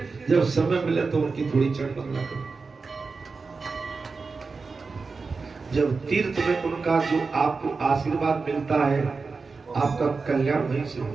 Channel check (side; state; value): left; quieter; 4.4 dB